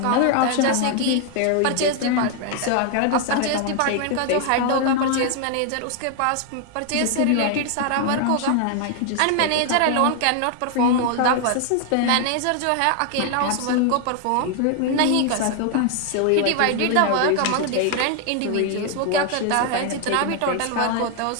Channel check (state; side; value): different; both; correlation 0.00